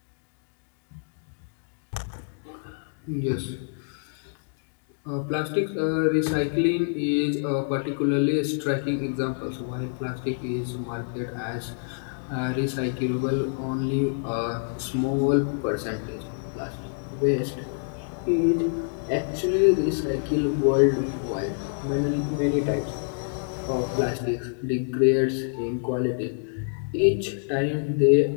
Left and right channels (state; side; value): silent; right; digital silence